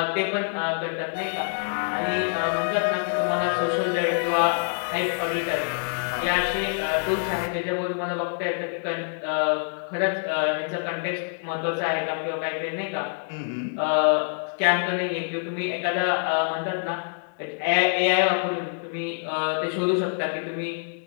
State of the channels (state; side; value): silent; right; digital silence